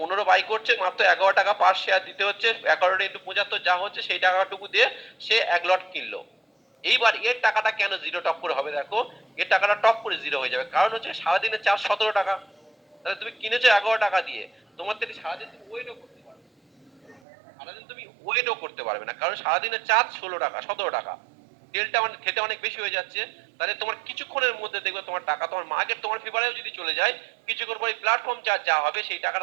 বাই করছে, মাত্র 11 টাকা পার শেয়ার দিতে হচ্ছে, 11 ইন্টু 75 যা হচ্ছে সেই টাকাটুকু দিয়ে সে 1 লট কিনলো। এইবার এর টাকাটা কেন জিরো টপ করে হবে? দেখো এর টাকাটা টপ করে জিরো হয়ে যাবে, কারণ হচ্ছে সারাদিনের চার্জ 17 টাকা, তাহলে তুমি কিনেছো 11 টাকা দিয়ে, তোমার থেকে সারাদিন তুমি ওয়েটও করতে পারবে, সারাদিন তুমি ওয়েটও করতে পারবে না, কারণ সারাদিনের চার্জ 16 টাকা 17 টাকা, তেলটা মানে খেতে অনেক বেশি হয়ে যাচ্ছে। তাহলে তোমার কিছুক্ষণের মধ্যে দেখবে তোমার টাকা, তোমার মার্কেট তোমার ফেভারেও যদি চলে যায়, কিছুক্ষণ পরে প্ল্যাটফর্ম চার্জ যা হবে সেই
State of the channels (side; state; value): left; drops out; at 17.2 s